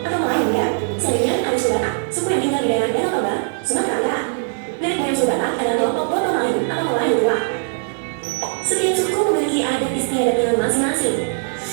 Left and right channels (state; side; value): silent; left; digital silence